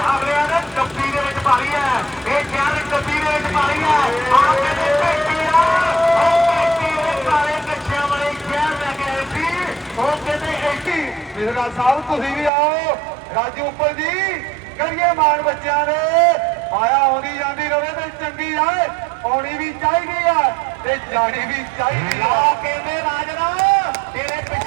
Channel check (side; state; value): left; drops out; at 12.5 s